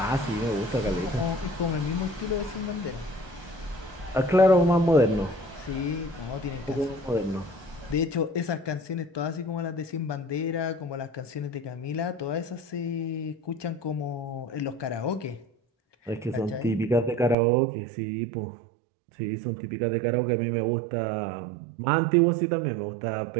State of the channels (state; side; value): drops out; left; at 17.4 s